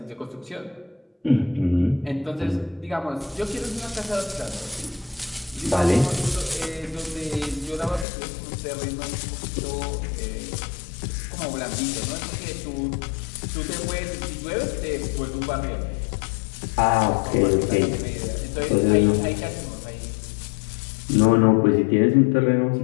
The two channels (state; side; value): drops out; right; at 8.1 s